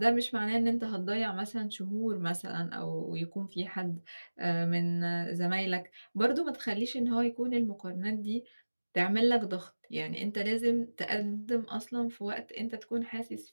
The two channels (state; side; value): inverted; both; correlation -1.00